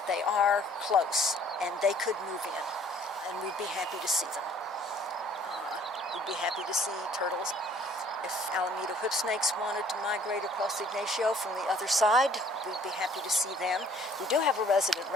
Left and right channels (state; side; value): normal; both; correlation 0.57